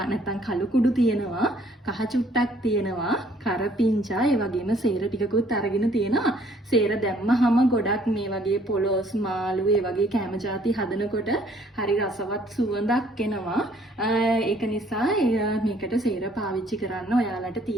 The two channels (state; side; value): normal; both; correlation 0.61